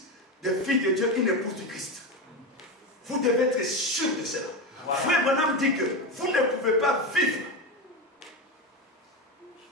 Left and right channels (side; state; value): both; normal; correlation 0.16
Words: des filles de Dieu, une épouse du Christ. Vous devez être sûr de cela. Voilà. Frère Branham dit que vous ne pouvez pas vivre